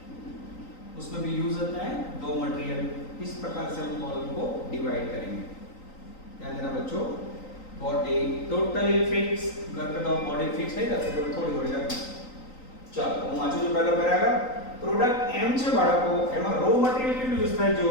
उसमें भी यूज होता है दो मटेरियल। इस प्रकार से हम कॉलम को डिवाइड करेंगे। ध्यान देना बच्चों, बॉडी टोटली फिक्स करके तो बॉडी फिक्स नहीं कर सकते, थोड़ी थोड़ी करके। ચાલો હું વાંચું છું પહેલો પેરાગ્રાફ। પ્રોડક્ટ એમ છે બાળકો, એમાં રો મટીરીયલ કેટલું યુઝ થાય? જો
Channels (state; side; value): late; right; 3.9 ms